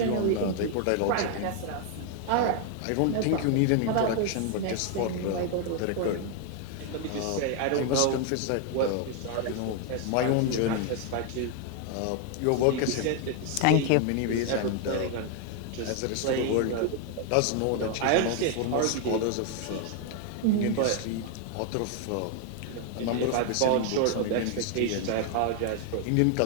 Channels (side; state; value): both; different; correlation 0.01